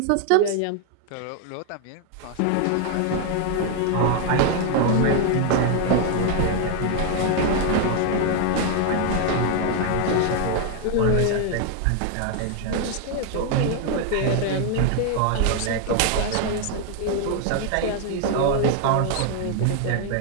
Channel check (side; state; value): both; different; correlation 0.00